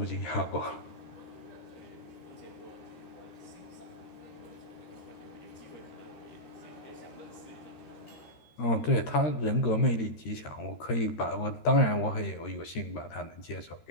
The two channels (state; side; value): late; right; 13 ms